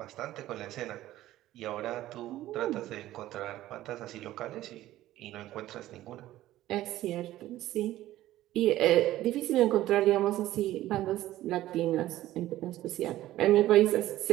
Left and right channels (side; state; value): left; quieter; 14.7 dB